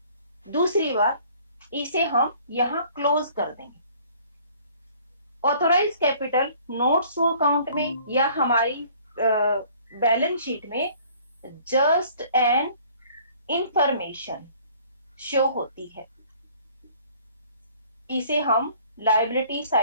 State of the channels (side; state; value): both; inverted; correlation -0.55